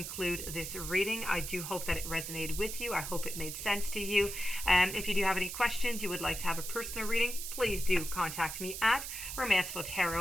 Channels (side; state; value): right; noise; hiss, 7 dB below the sound